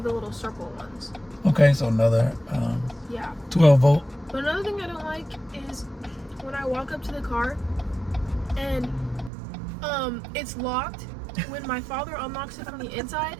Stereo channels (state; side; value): drops out; left; at 9.3 s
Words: the little circle ones. Okay, so another Yeah. 12 volt. But another thing I don't like is when I walk up to the car and it's locked. When my father unlocks it from the inside,